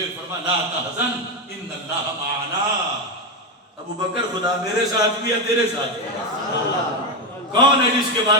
فرمایا لا تحزن ان اللہ معنا، ابو بکر خدا میرے ساتھ بھی ہے تیرے ساتھ بھی ہے۔ کون ہے جس کے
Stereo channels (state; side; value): normal; both; correlation 0.10